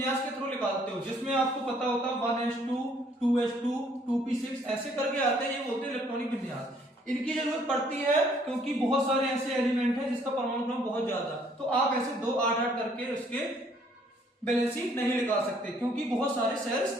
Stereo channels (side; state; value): both; normal; correlation 0.63